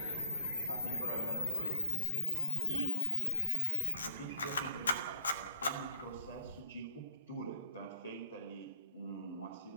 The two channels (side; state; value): both; inverted; correlation -0.60